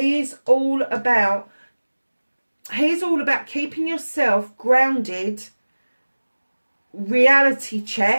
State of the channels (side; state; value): both; inverted; correlation -1.00